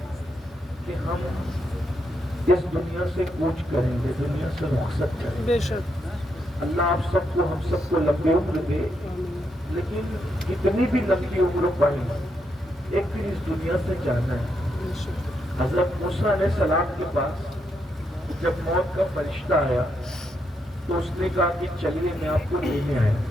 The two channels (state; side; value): normal; both; correlation 0.80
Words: کہ ہم اس دنیا سے کوچ کریں گے دنیا سے رخصت کریں گے. بے شک اللہ آپ سب کو ہم سب کو لمبی عمر دے لیکن کتنی بھی لمبی عمر پائیں ایک دن اس دنیا سے جانا ہے. حضرت موسیٰ علیہ السلام کے پاس جب موت کا فرشتہ آیا تو اس نے کہا کہ چلیے میں آپ کو لینے آیا.